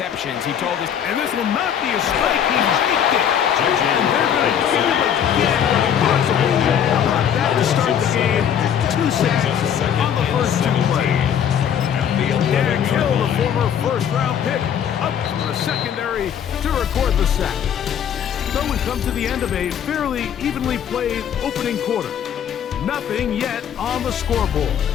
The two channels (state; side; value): quieter; right; 8.9 dB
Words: He told us, and this will not be a strike. He faked it. And they're going to get him again when possible. How about that to start the game? 2 sacks on the first 2 plays. Derek Hill, the former first-round pick, up from the secondary to record the sack. So we come to the end of a fairly evenly played opening quarter. Nothing yet on the scoreboard.